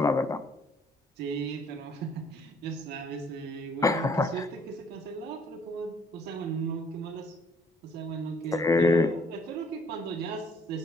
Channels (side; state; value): both; normal; correlation 0.61